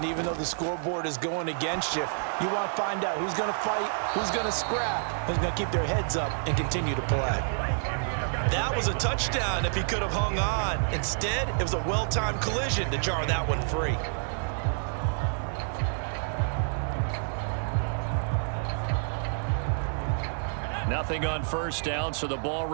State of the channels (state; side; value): silent; left; 59 dB below the other